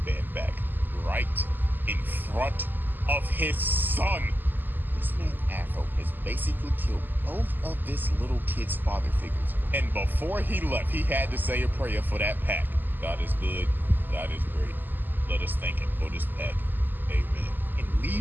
back right in front of his son. This man Afro has basically killed both of this little kid's father figures. And before he left, he had to say a prayer for that pack. God is good. God is great. Let us thank him for this pack. Amen. And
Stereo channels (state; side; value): late; left; 0.089 ms